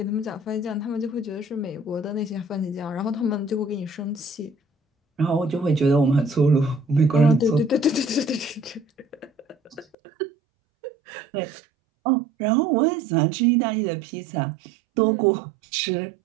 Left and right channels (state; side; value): drops out; left; at 10.0 s